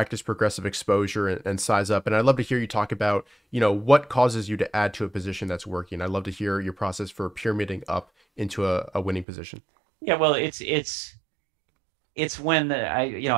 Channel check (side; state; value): left; drops out; at 9.2 s